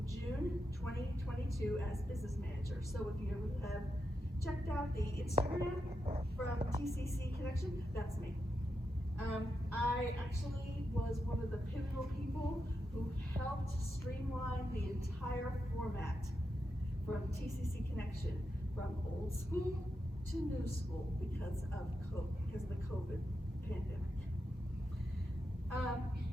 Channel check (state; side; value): normal; both; correlation 0.86